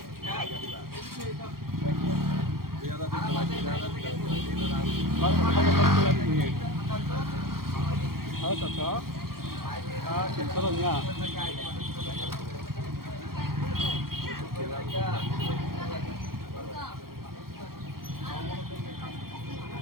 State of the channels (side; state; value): left; late; 0.93 ms